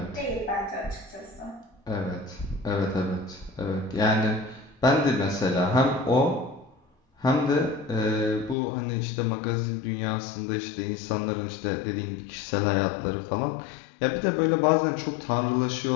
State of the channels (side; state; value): right; drops out; at 8.6 s